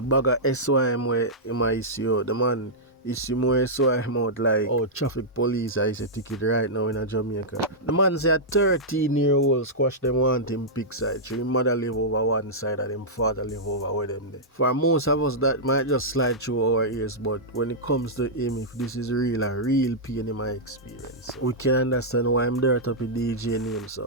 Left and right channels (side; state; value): both; normal; correlation -0.11